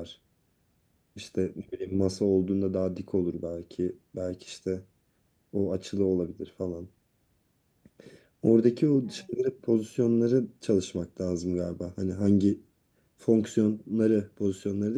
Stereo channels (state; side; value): identical; both; correlation 1.00